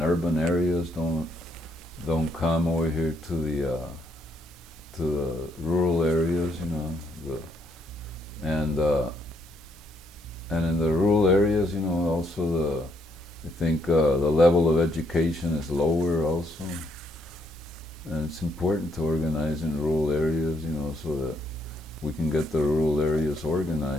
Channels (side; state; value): both; normal; correlation 0.73